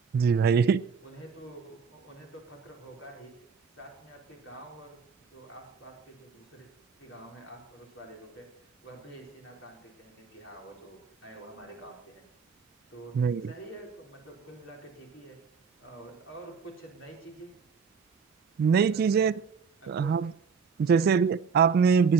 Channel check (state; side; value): quieter; left; 5.9 dB